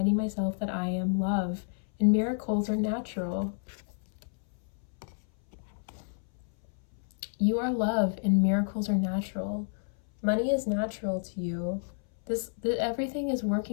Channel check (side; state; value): right; silent; 58 dB below the other